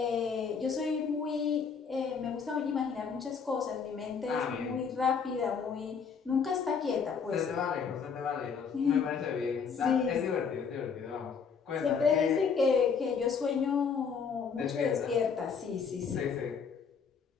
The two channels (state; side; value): quieter; right; 6.0 dB